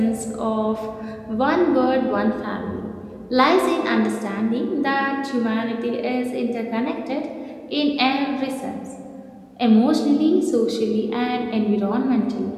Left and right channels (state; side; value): identical; both; correlation 1.00